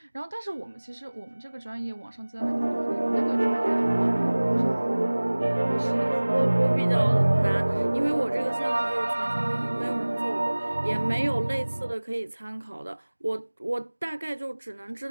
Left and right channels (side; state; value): both; inverted; correlation -1.00